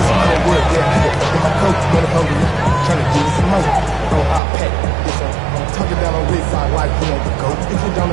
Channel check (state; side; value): drops out; left; at 4.4 s